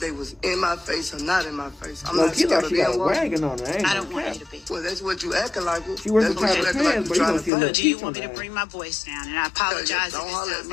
was in my face or not in my face? I'm not scared of them. Wagging on her. I don't want you to be. Well, that's what you acting like. She that's what you acting like. But do you want me to bring my voice down? And I apologize don't if it holler sounds at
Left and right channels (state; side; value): drops out; right; at 7.5 s